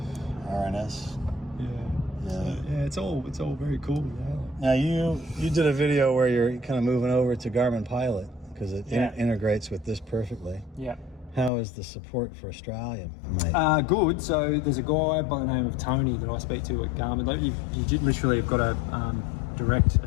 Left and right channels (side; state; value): right; drops out; at 11.5 s